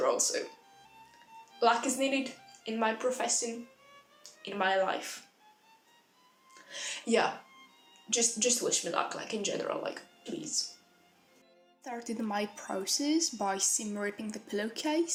all, so luck is needed in my profession, in my life. Yeah, just wish me luck, like in general, like please. Started my process by seam ripping the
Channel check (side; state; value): both; identical; correlation 1.00